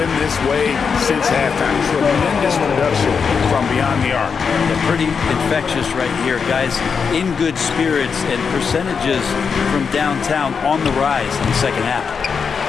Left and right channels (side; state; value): right; quieter; 5.9 dB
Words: this way since halftime. Tremendous production from beyond the arc. They're pretty infectious right here, guys. In good spirits and percentages from downtown on the rise in the 2nd half.